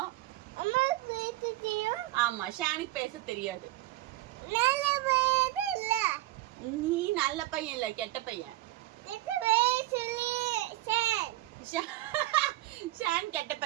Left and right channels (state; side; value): quieter; left; 16.8 dB